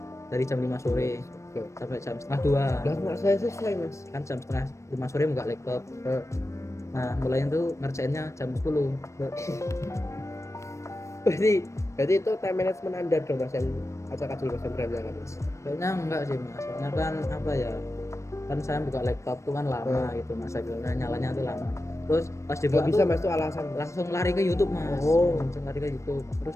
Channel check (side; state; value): right; late; 0.14 ms